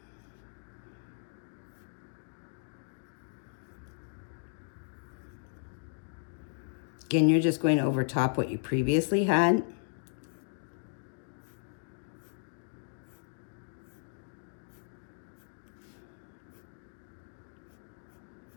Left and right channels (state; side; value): silent; right; digital silence